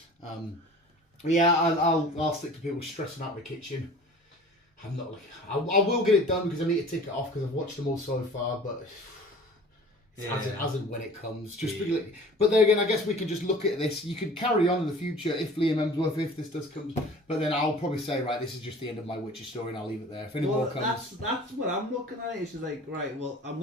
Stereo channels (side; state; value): both; normal; correlation 0.44